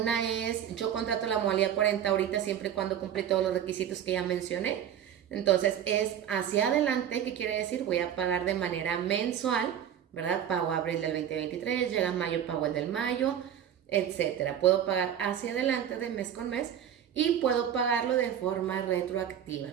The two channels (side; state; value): left; quieter; 9.7 dB